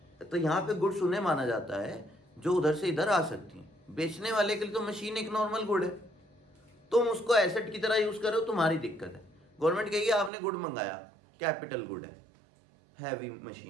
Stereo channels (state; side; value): drops out; left; at 10.3 s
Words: तो यहाँ पे गुड्स उन्हें माना जाता है जो उधर से इधर आ सकती हैं। बेचने वाले के लिए तो मशीन एक नॉर्मल गुड है, तुम उसको एसेट की तरह यूज करो, तुम्हारी दिक्कत है। गवर्नमेंट कहेगी आपने गुड मंगाया, कैपिटल गुड है, हैवी